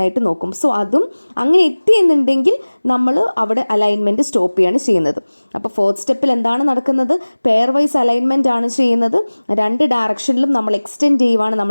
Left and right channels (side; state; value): both; inverted; correlation -1.00